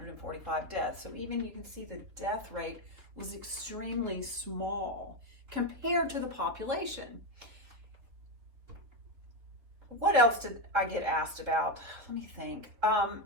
deaths. So even you can see the death rate was extremely small compared to the population. What else did I get asked about? Let me think. Oh,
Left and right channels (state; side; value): late; left; 4.0 ms